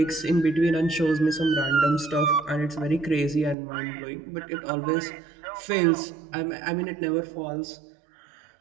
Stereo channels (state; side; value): drops out; left; at 3.6 s